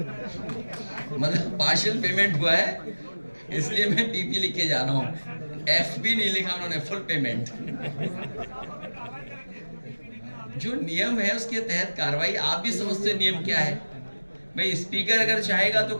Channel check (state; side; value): inverted; both; correlation -1.00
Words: मतलब पार्शियल पेमेंट हुआ है इसलिए मैं पीपी लिख के जा रहा हूँ, एफपी नहीं लिखा उन्होंने, फुल पेमेंट। जो नियम है उसके तहत कार्रवाई, आप भी समझते हैं नियम क्या है भाई। स्पीकर अगर चाहेगा तो